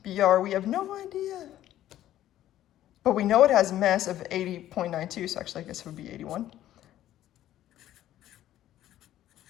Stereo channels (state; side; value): quieter; right; 12.9 dB